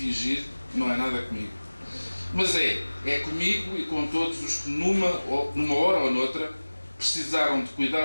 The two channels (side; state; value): both; inverted; correlation -1.00